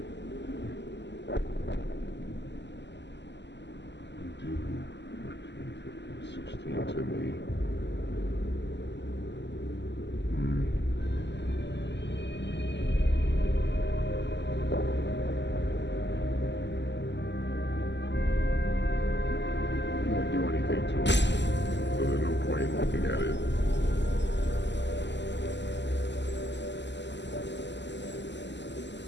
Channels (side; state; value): right; late; 0.51 ms